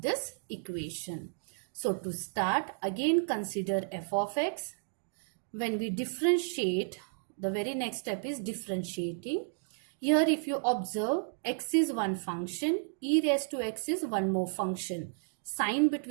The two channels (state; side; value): silent; left; digital silence